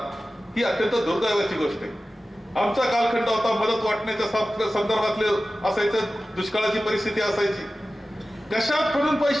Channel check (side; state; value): both; normal; correlation 0.95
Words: ही अत्यंत दुर्दैवाची गोष्ट आहे. आमचा कालखंड होता मदत वाटण्याच्या संदर्भातले असायचं, दुष्काळाची परिस्थिती असायची. कशात म्हणून